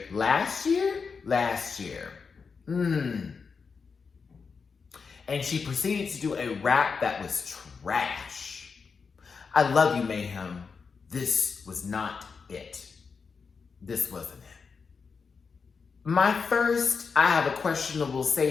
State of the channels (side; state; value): right; quieter; 5.3 dB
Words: Last year. And she proceeded to do a rap that was trash. I love you, Mayhem. This was not it. This wasn't it. My first, I have a questionable